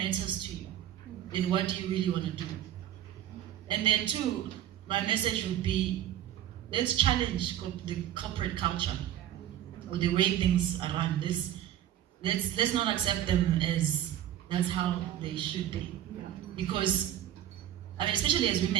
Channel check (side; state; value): left; quieter; 11.8 dB